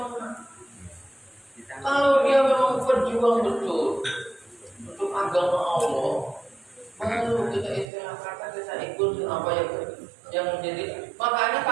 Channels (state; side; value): drops out; left; at 7.9 s